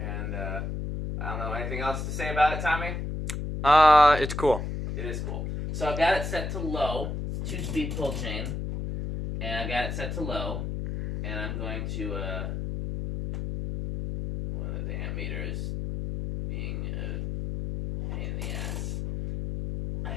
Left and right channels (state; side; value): noise; left; hum, 3 dB below the sound